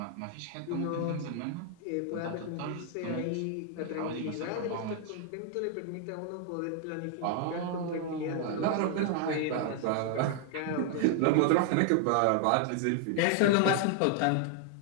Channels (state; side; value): different; both; correlation 0.00